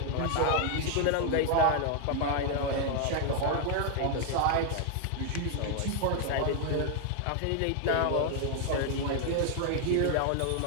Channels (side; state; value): both; different; correlation 0.00